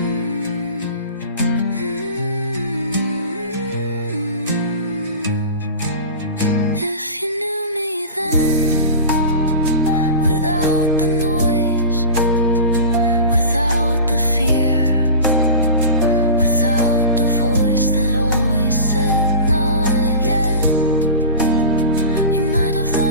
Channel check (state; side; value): inverted; both; correlation -0.32